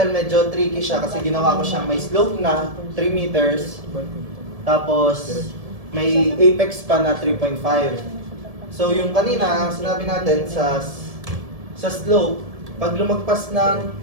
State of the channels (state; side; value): late; left; 1.7 ms